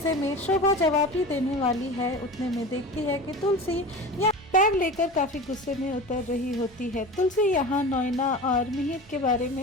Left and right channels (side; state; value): both; normal; correlation 0.32